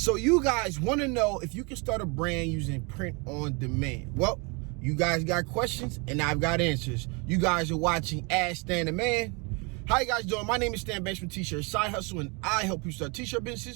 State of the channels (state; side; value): quieter; left; 30.9 dB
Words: So you guys want to know if you can start a brand using print on demand. Well, you guys got questions and I've got answers. You guys are watching Ask Stan the Man. How you guys doing? My name is Stan Bench from T-Shirt Side Hustle, and I help you start t-shirt